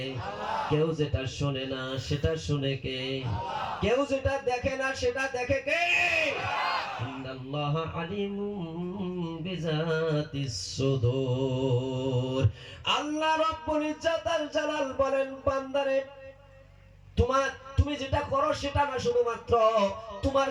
কেউ যেটা শোনে না সেটা শুনে কে? কেউ যেটা দেখে না সেটা দেখে কে? ইন্নাল্লাহা আলিমুম বিযাতিস সুদূর। আল্লাহ রাব্বুল ইজ্জাত আল জালাল বলেন, বান্দারে তুমি যেটা করো সেটা না, শুধুমাত্র তোমার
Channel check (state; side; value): identical; both; correlation 1.00